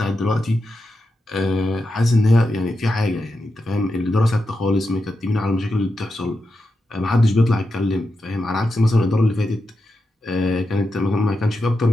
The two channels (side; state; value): both; normal; correlation 0.88